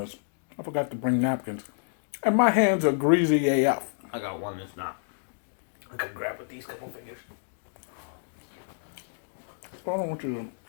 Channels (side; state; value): right; silent; digital silence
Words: I forgot to bring napkins. And my hands are greasy AF. I got one that's not. I can grab with these couple fingers. So I don't want you to